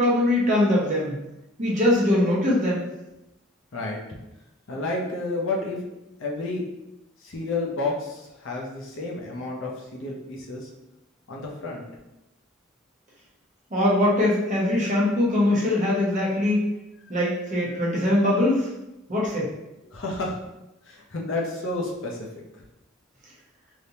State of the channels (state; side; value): normal; both; correlation 0.50